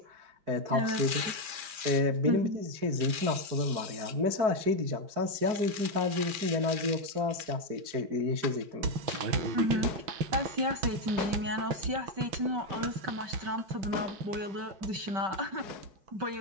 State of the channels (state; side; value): late; left; 5.0 ms